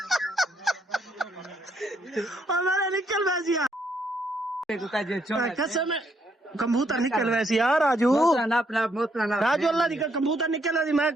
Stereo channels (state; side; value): normal; both; correlation 0.72